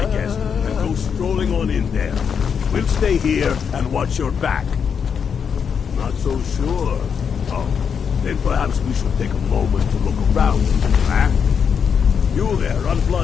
guest and go strolling on in there. We'll stay here and watch your back. Not so sure. Oh, then perhaps we should take a moment to look around. Huh? You there,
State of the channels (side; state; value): right; quieter; 6.9 dB